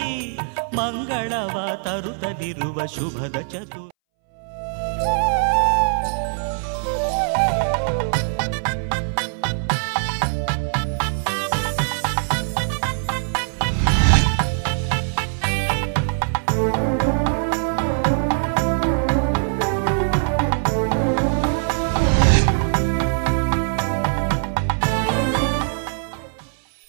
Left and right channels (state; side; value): silent; left; 63 dB below the other